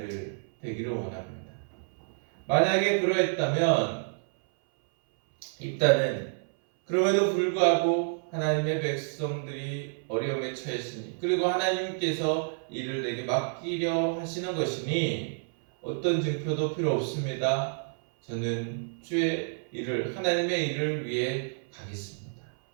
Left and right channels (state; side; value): silent; left; 59 dB below the other